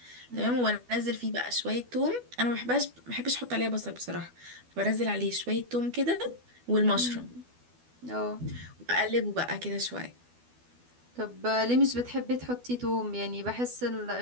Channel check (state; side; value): late; left; 12 ms